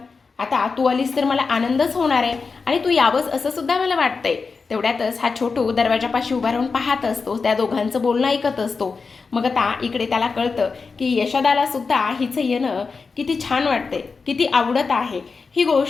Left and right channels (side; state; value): right; quieter; 4.7 dB